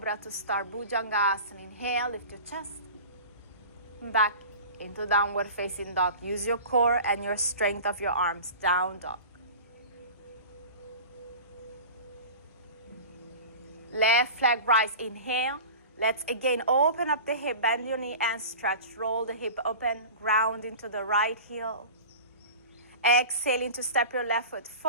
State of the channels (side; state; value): both; inverted; correlation -0.35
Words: to start. Bhujangasana. Inhale, lift your chest. Back into downward facing dog. Use your core and your strength of your arms. Down dog. Left leg rise. Inhale. Let's again open up the hip. Bend your knee and stretch. Roll the hip open. Ground into the right heel. Exhaling to step your left foot